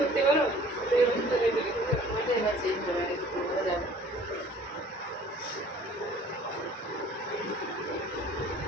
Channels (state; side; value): normal; both; correlation 0.51